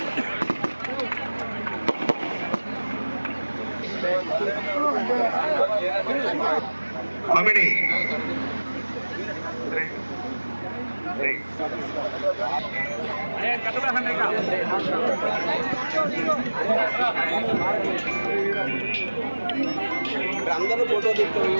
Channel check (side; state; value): both; inverted; correlation -1.00